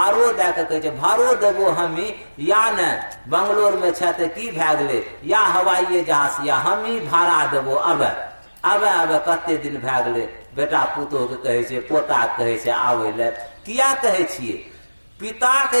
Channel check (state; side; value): inverted; both; correlation -1.00